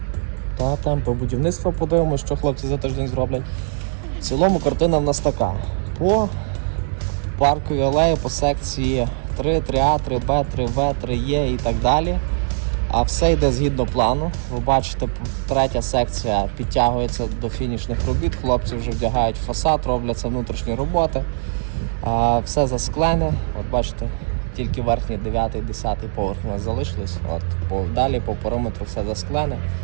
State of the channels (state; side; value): silent; left; digital silence